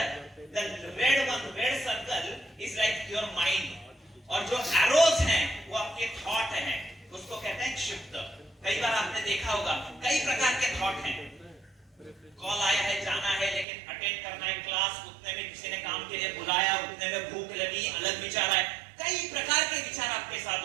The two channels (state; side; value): drops out; left; at 13.7 s